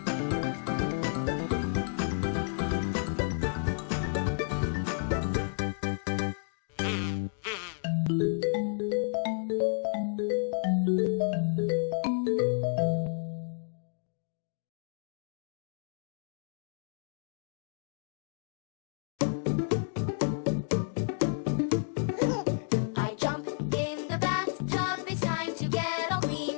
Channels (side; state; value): right; silent; digital silence